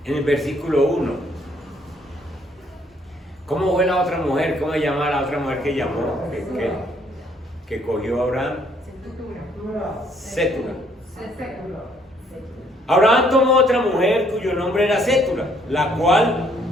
En el versículo 1. ¿Cómo fue la otra mujer? ¿Cómo se llama la otra mujer que llamó? Que cogió a Abraham. Sétura. Abraham tomó otra mujer cuyo nombre era Sétura, la cual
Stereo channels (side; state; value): both; normal; correlation 0.66